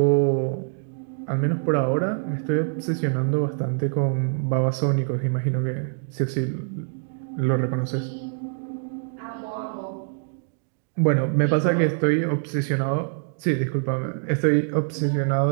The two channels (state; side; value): silent; left; digital silence